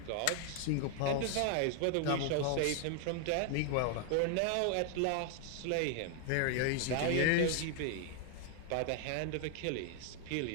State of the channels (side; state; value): both; different; correlation 0.00